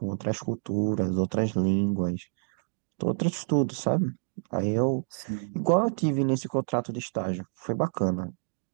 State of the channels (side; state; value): left; silent; digital silence